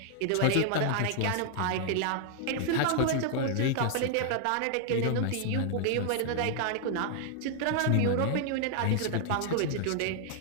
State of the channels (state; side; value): different; both; correlation 0.00